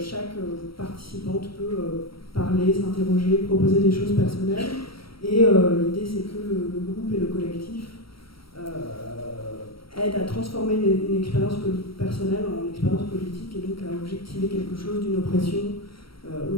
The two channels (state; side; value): late; right; 0.75 ms